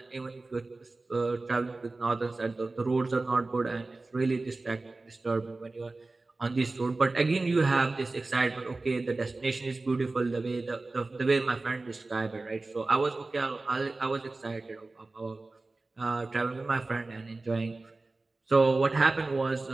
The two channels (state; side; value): quieter; left; 3.3 dB